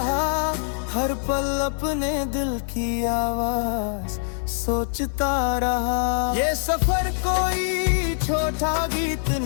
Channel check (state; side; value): silent; right; digital silence